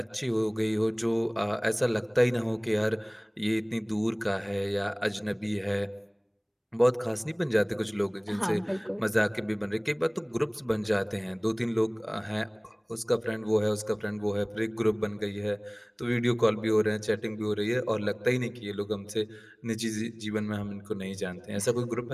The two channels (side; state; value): both; identical; correlation 1.00